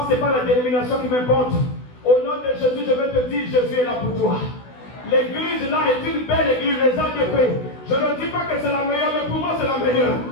ce n'est pas la dénomination qui m'importe. Au nom de Jésus, je vais te dire, Jésus est là pour toi. L'église là est une belle église, les ADP. Je ne dis pas que c'est la meilleure, mais pour moi c'est la meilleure.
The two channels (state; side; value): late; right; 16 ms